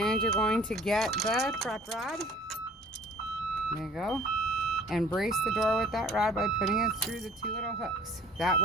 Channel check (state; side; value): normal; both; correlation 0.51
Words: you're going to get the prop rod. There you go. And brace the door with that rod by putting it through the two little hooks. That